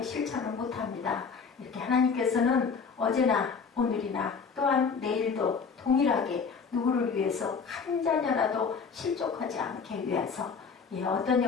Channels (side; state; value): right; quieter; 5.6 dB